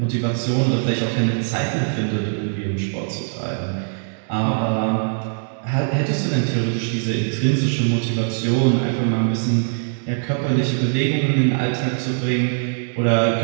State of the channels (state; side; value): silent; left; digital silence